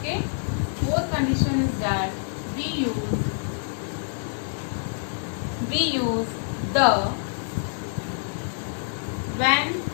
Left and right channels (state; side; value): silent; right; 61 dB below the other